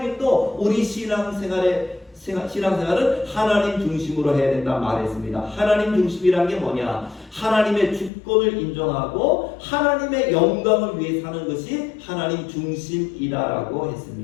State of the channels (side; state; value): right; drops out; at 8.1 s